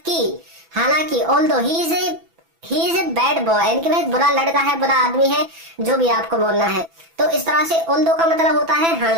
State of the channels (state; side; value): late; left; 6.0 ms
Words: हालांकि although he is a bad boy, यानी कि वह बुरा लड़का है, बुरा आदमी है, जो भी आपको बोलना है। तो इस तरह से ऑल्दो का मतलब होता है